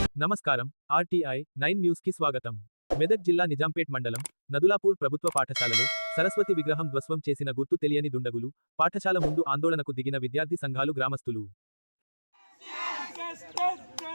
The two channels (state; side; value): inverted; both; correlation -1.00